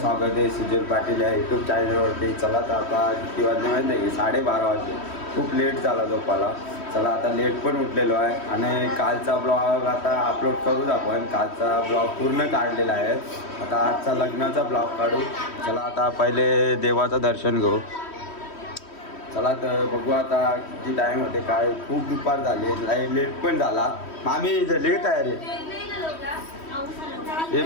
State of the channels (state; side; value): late; right; 3.1 ms